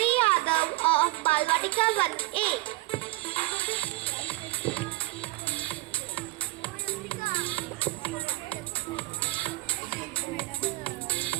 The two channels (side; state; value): left; quieter; 21.8 dB